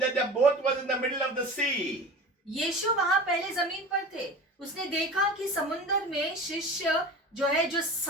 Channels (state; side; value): normal; both; correlation 0.35